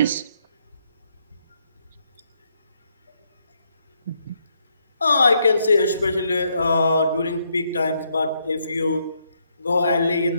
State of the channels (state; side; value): inverted; both; correlation -0.76